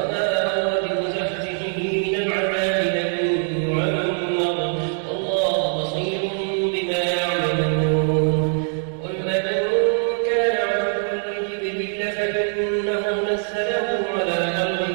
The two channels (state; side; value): silent; left; 56 dB below the other